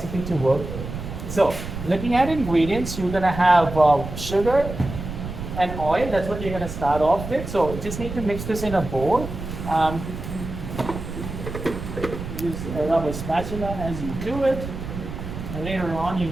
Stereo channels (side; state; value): right; noise; rumble, 8 dB below the sound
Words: to work with. So, looking at ingredients, you're gonna have sugar and oil. That's what you're gonna start off with. So, you just need to mix this in a bowl. Use a rubber spatula as you do it. And later on, you're